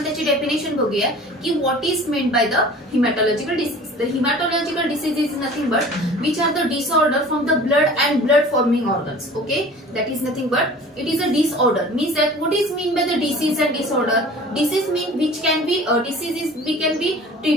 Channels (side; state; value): both; normal; correlation 0.44